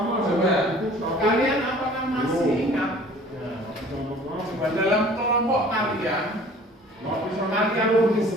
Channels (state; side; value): normal; both; correlation 0.49